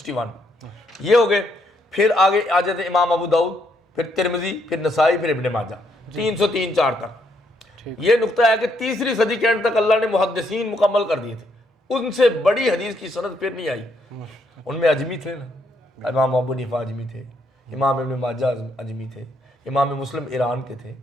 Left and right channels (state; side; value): normal; both; correlation 0.74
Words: یہ ہو گئے۔ پھر آگے آ جاتے امام ابو داؤد، پھر ترمذی، پھر نسائی، پھر ابن ماجہ، 303 4 تک۔ یہ نقطہ ہے کہ تیسری صدی کے اینڈ تک اللہ نے محدثین مکمل کر دیے تھے، ان سے بڑی حدیث کی سند پھر نہیں آئی۔ ان میں اجمی تھے نا، امام ابو حنیفہ اجمی تھے، امام ابن ماجہ اجمی تھے، امام مسلم ایران کے تھے،